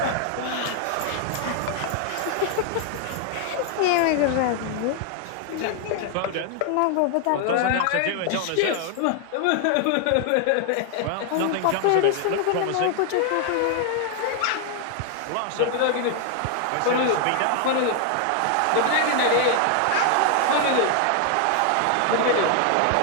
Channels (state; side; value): different; both; correlation 0.00